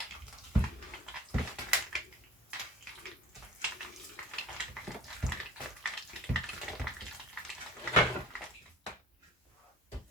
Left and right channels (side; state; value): both; normal; correlation 0.42